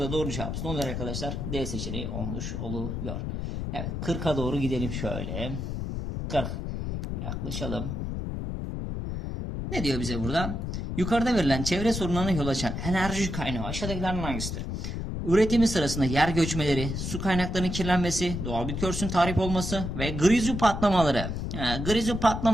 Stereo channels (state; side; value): noise; left; rumble, 4 dB below the sound